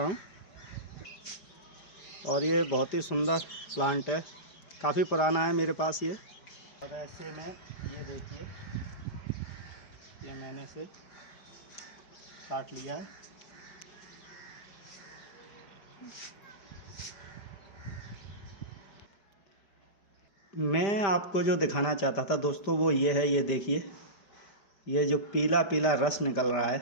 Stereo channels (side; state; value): right; late; 5.0 ms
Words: हूँ। और ये बहुत ही सुंदर प्लांट है, काफ़ी पुराना है मेरे पास ये। और ऐसे में ये देखिए, ये मैंने इसे काट लिया है। मैं आपको जो दिखाना चाहता था दोस्तों वो ये है, ये देखिए, ये जो पीला पीला रस निकल रहा